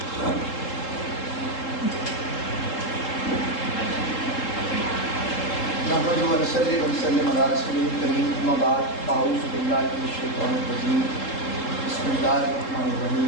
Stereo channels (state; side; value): late; right; 3.7 ms